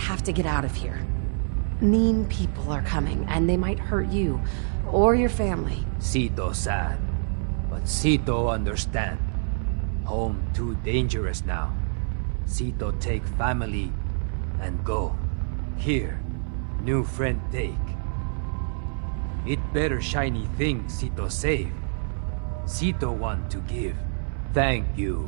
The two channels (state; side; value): silent; left; 61 dB below the other